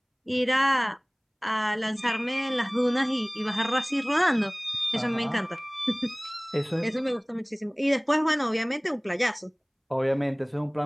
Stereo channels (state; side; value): identical; both; correlation 1.00